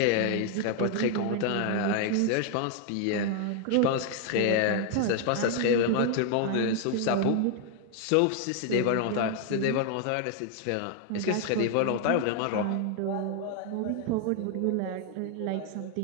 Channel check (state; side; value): different; both; correlation 0.00